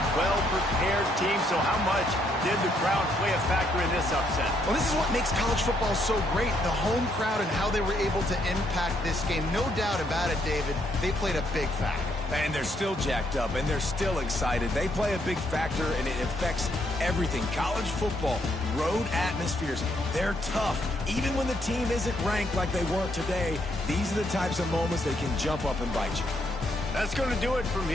well-prepared team. So how much did the crowd play a factor in this upset? Well, this is what makes college football so great, the home crowd and how they were able to impact this game. No doubt about it, David. They played a big factor. And they're still jacked up, and they're still excited. They play a big factor, and it affects everything. College football, road atmospheres, they're tough. Even when the team isn't ranked like they weren't today, these are the types of moments they can jump up and bite you. That's going to do it from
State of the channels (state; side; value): normal; both; correlation 0.73